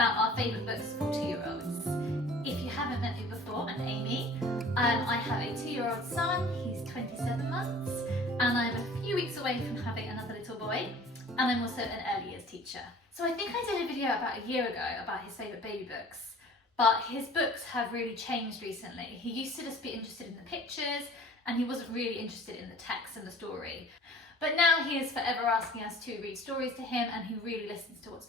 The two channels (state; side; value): normal; both; correlation 0.48